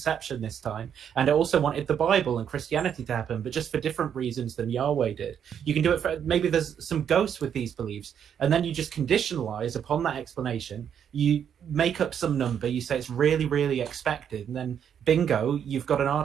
this time. And it also wanted the Bible and Christianity to happen, but just for different reasons than Yahweh did. You can do it for, maybe there's some ghosts with these beliefs, and then you just conditionalize upon that explanation. You make up some number, you say it's really, really expected, and then bingo, you've got an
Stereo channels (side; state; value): left; quieter; 8.5 dB